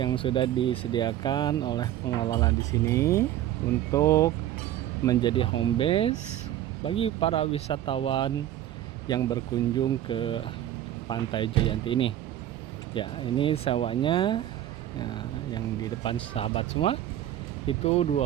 sudah disediakan oleh pengelola di sini untuk menjadi home base bagi para wisatawan yang berkunjung ke Pantai Jayanti ini. Ya, ini sewanya ya, yang di depan sahabat semua itu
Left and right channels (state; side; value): quieter; left; 12.5 dB